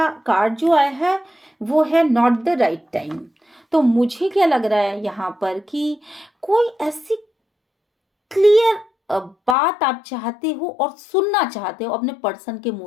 कार्ड जो आया है वो है नॉट द राइट टाइम। तो मुझे क्या लग रहा है यहाँ पर कि कोई ऐसी क्लियर बात आप चाहते हो और सुनना चाहते हो अपने पर्सन के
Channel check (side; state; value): right; drops out; at 9.6 s